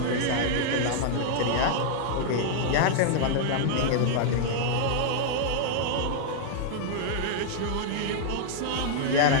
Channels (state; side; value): different; both; correlation -0.01